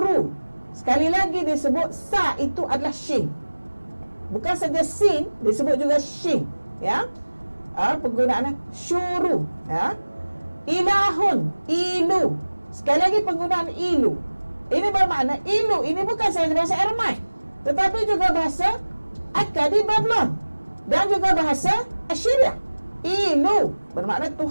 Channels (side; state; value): both; inverted; correlation -1.00